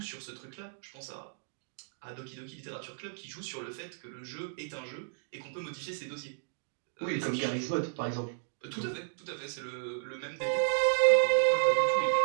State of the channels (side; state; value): left; silent; digital silence